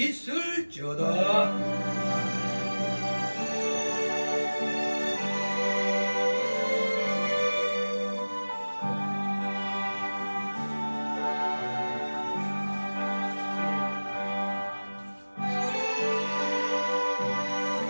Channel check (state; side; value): inverted; both; correlation -1.00